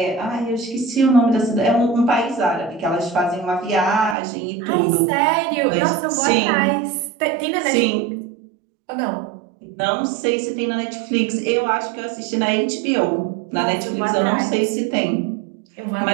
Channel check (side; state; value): left; drops out; at 4.2 s